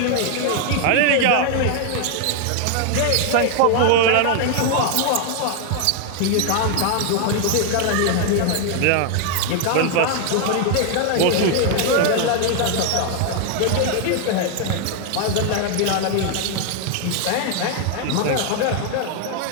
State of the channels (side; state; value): both; different; correlation 0.00